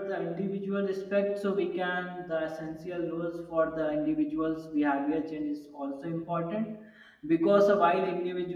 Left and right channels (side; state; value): both; identical; correlation 1.00